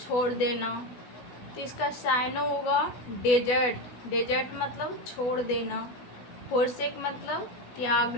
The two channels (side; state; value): right; late; 16 ms